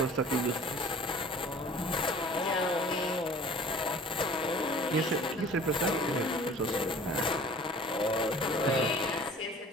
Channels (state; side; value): normal; both; correlation 0.47